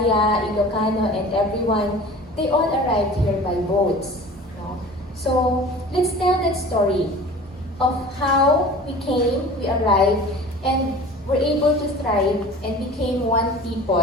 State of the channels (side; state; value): both; normal; correlation 0.41